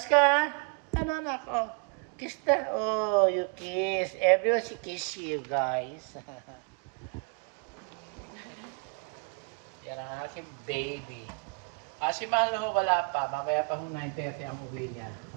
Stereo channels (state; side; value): quieter; left; 35.0 dB